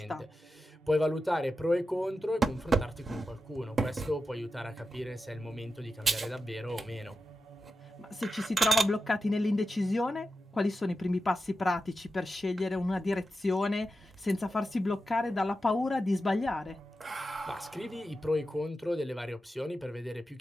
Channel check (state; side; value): normal; both; correlation 0.91